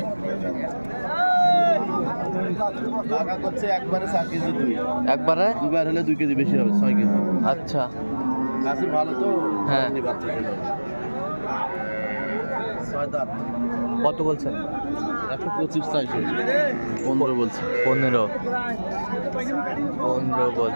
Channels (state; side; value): inverted; both; correlation -1.00